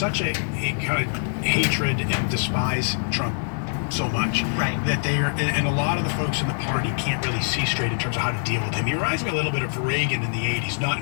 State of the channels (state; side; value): silent; right; digital silence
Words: a kind of hatred and despise Trump so much that they are, and a lot of the folks in the party can't really see straight in terms of how to deal with him. He reminds me a little bit of Reagan in the 80s, not